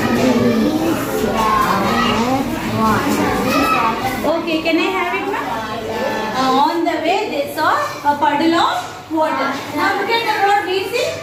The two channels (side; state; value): both; identical; correlation 1.00